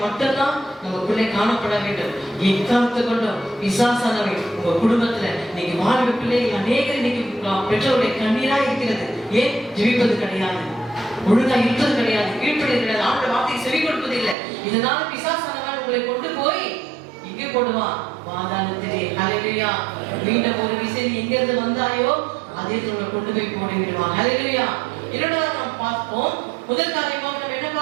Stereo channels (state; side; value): drops out; left; at 14.4 s